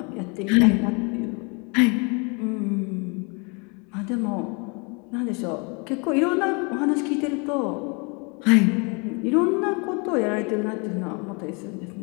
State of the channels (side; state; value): right; quieter; 32.8 dB